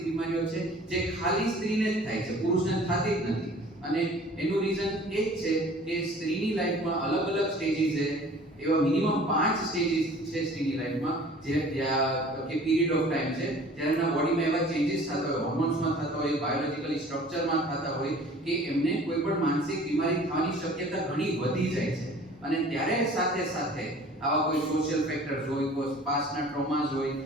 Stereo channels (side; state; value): both; normal; correlation 0.48